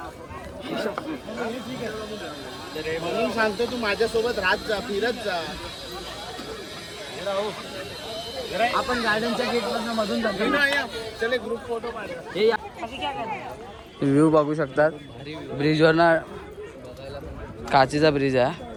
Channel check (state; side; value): identical; both; correlation 1.00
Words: म्हणून सांगतो तू माझ्यासोबत राहत जा, फिरत जा। आपण गार्डनच्या गेटमधून मधून जातो। चले ग्रुप फोटो काढ। व्ह्यू बघू शकतात ब्रिजवर ना, काचेचा ब्रिज आहे